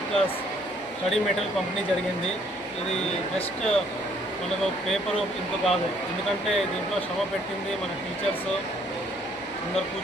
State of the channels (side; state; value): both; normal; correlation 0.64